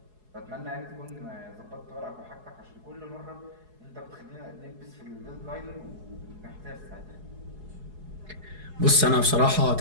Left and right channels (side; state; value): left; late; 4.7 ms